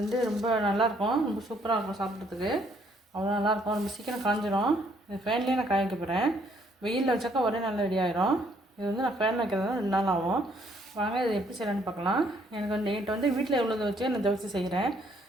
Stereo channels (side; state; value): both; normal; correlation 0.66